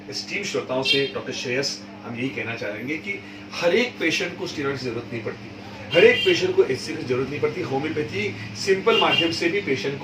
स्टीम श्रोताओं से डॉक्टर श्रेयस हम यही कहना चाहेंगे कि हर एक पेशेंट को स्टीरॉइड की जरूरत नहीं पड़ती, हर एक पेशेंट को एचसी की जरूरत नहीं पड़ती। होम्योपैथी सिंपल माध्यम से भी पेशेंट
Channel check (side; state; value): both; identical; correlation 1.00